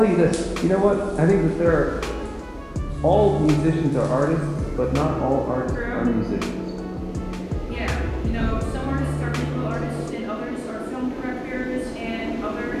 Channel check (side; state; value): both; identical; correlation 1.00